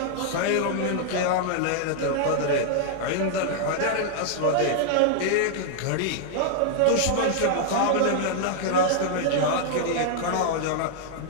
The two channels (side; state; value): both; different; correlation -0.01